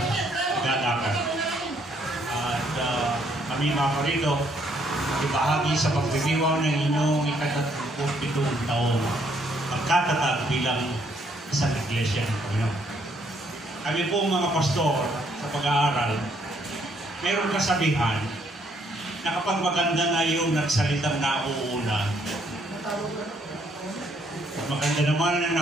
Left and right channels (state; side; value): normal; both; correlation 0.69